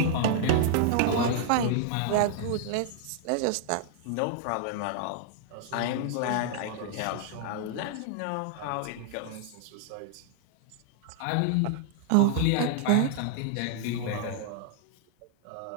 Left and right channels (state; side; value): different; both; correlation -0.01